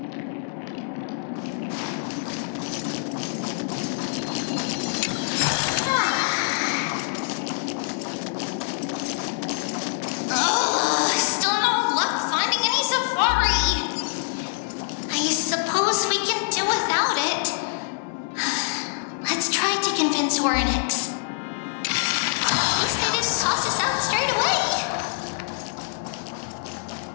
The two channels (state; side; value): silent; right; 62 dB below the other